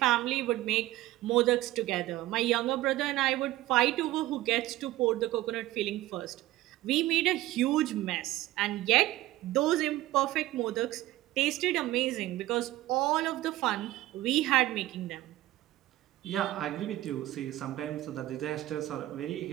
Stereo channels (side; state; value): left; quieter; 16.1 dB